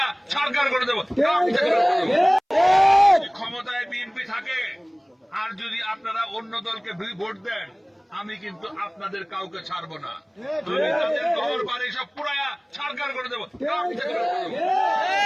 সরকার করে দেবো। ক্ষমতায় বিএনপি থাকে আর যদি আপনারা অন্য দলকে ভোট দেন, আমি কিন্তু আপনাদের কাউকে ছাড়বো না। আমি তাদের ঘর বাড়ি সব পুরায়া সরকার করে দেবো।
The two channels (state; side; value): identical; both; correlation 1.00